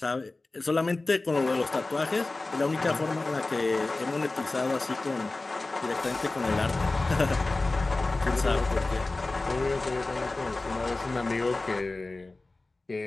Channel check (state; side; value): quieter; right; 3.2 dB